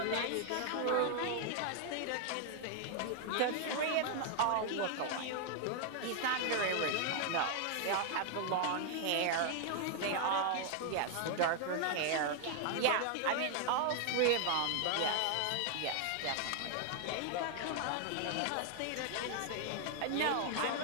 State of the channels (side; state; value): both; different; correlation 0.00